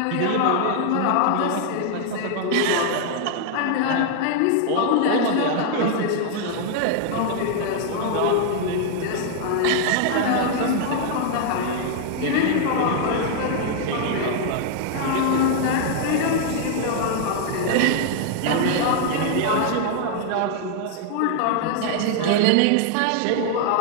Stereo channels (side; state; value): both; different; correlation 0.00